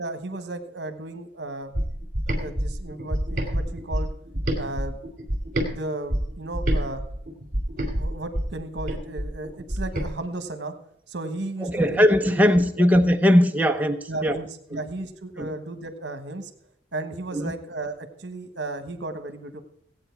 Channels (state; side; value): normal; both; correlation 0.79